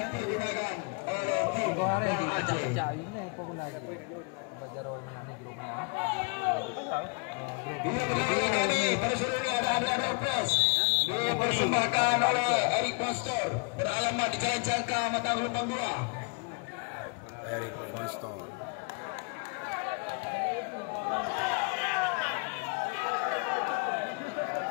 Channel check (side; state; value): right; quieter; 33.0 dB